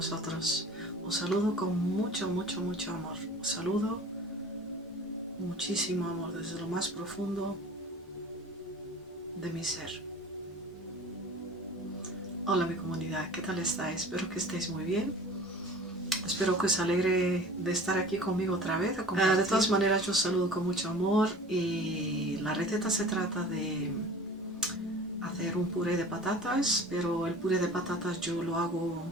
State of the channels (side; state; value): both; normal; correlation 0.42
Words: Os saludo con mucho, mucho, mucho amor. Os saludo muchísimo amor desde lo más profundo de mi ser. Hola mi comunidad, ¿qué tal estáis? Espero que estéis muy bien. Espero que os alegre de estar aquí conmigo otra vez. De todas maneras, yo os saludo con mucho amor y la receta se trata de hacer un puré de patatas, pero el puré de patatas yo lo